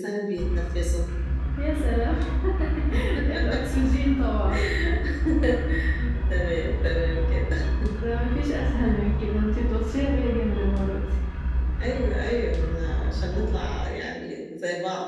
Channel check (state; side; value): identical; both; correlation 1.00